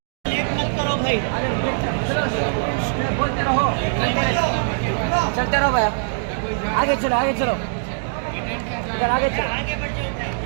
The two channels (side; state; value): left; silent; digital silence